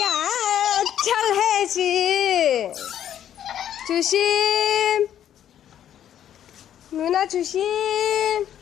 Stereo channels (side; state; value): right; quieter; 10.5 dB